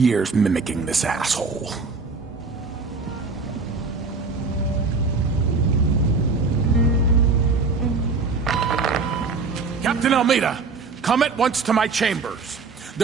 mimicking this asshole. Captain Almeida, come at once to my chambers.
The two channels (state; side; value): quieter; left; 4.4 dB